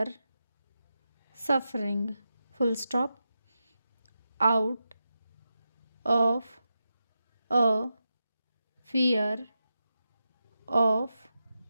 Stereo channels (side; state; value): both; inverted; correlation -0.89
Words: suffering. Full stop. Out of a fear of